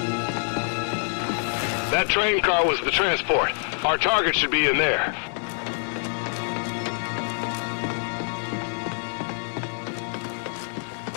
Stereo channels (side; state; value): right; silent; 61 dB below the other